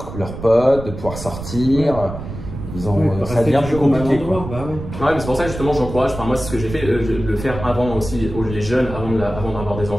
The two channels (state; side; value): noise; right; rumble, 10 dB below the sound